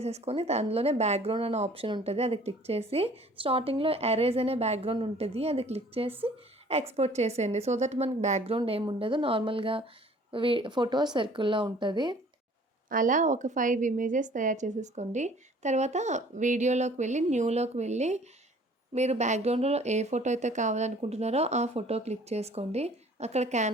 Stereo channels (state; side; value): normal; both; correlation 0.53